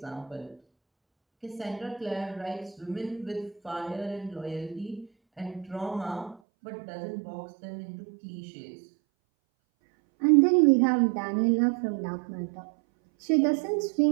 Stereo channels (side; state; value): left; drops out; at 6.4 s